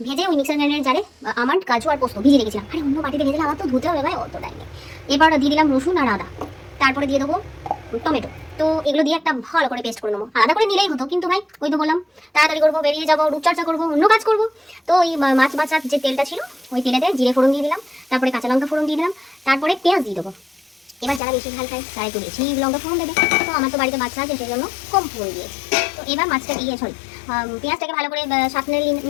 ভেজে ওই মিক্সার গ্রাইন্ডারের জারে আমার কাজু আর পোস্ত ভিজিয়ে রেখেছিলাম। আরে অন্য বাটিতে ভেজে আমার তো ধুতে হবে ভাই, অত টাইম নেই। এবার দিয়ে দিলাম রসুন আর আদা, তারপরে দিয়ে দেবো টমেটো। তো এগুলো দিয়ে একটা ভালো করে পেস্ট করে নেবো। আলাদা করে নিলেই হতো, কিন্তু ভাই ওই তো বললাম তাড়াতাড়ি করবো, বেরিয়ে যাবো, রূপচর্চা করবো, অন্য কাজ করবো। তো ওই মাছ বাছার যে তেলটা ছিল ওই তেলেতে জিরে ফোড়ন দিয়ে দিলাম, তারপরে কাঁচা লঙ্কা ফোড়ন দিয়ে দিলাম, তারপরে পেঁয়াজ দিয়ে দেবো। এবার যারা বেশি ঝাল খায় তারা একটু বেশি লঙ্কা ফোড়ন দেবে। তো আমার তো বাড়িতে বাচ্চা আছে সেই জন্য কম ফোড়ন দিয়েছি। তো এবার মাছটা দিয়ে পেঁয়াজটাকে ভালো করে সাঁতলে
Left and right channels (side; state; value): right; drops out; at 21.2 s